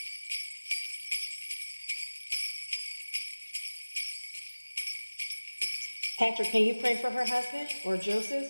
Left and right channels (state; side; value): inverted; both; correlation -1.00